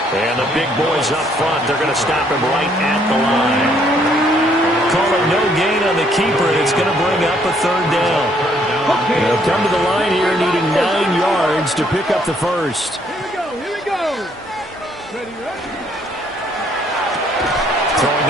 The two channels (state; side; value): normal; both; correlation 0.67